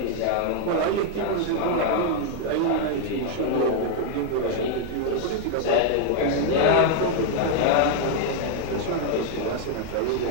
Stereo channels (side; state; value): both; different; correlation 0.00